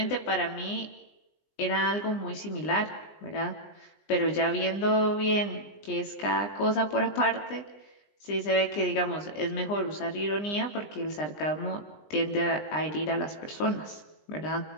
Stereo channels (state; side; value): late; right; 20 ms